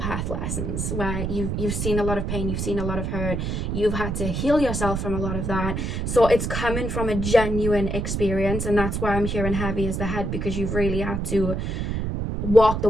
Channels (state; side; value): noise; right; rumble, 2 dB below the sound